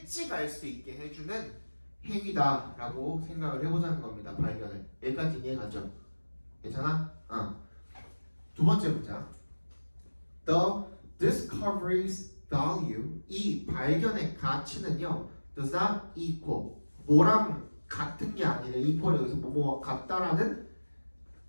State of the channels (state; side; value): inverted; both; correlation -1.00